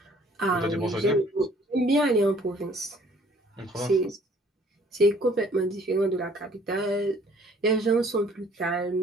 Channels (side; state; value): both; normal; correlation 0.57